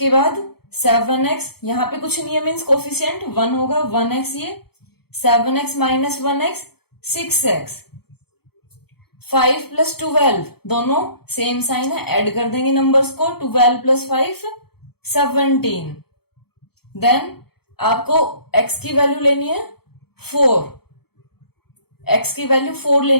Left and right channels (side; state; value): right; late; 0.96 ms